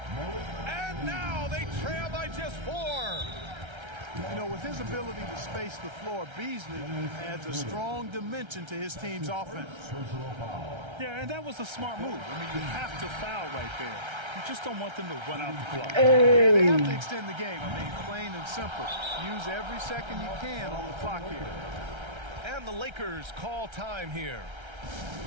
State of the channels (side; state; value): left; late; 1.3 ms